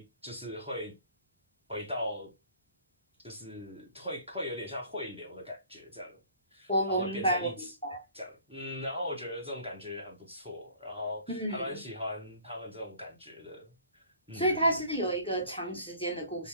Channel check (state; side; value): inverted; both; correlation -0.51